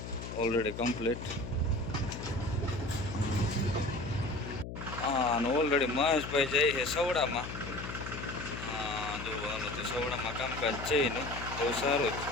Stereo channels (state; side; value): noise; left; hum, 8 dB below the sound